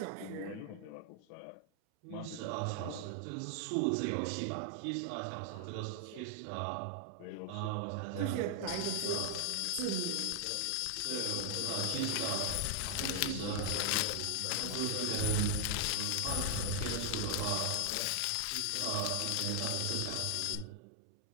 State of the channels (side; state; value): both; different; correlation 0.00